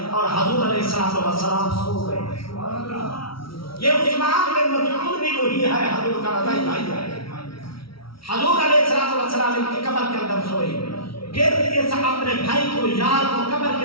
اور حضور علیہ السلام سو گئے۔ یہ عثمان بن مظعون بھی وہی ہے، حضور کا رضائی بھائی ہے۔ حضور علیہ السلام ان کی قبر کے اندر سوئے، پھر اس اپنے بھائی کو یار کو قبر کے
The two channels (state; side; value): late; right; 0.75 ms